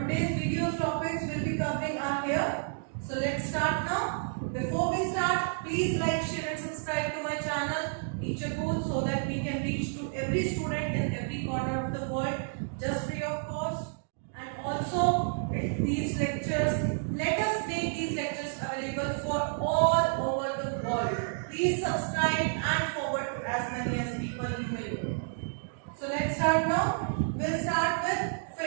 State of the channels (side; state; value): left; silent; digital silence